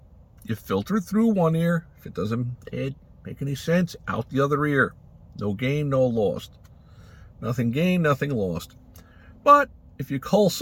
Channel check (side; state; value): both; identical; correlation 1.00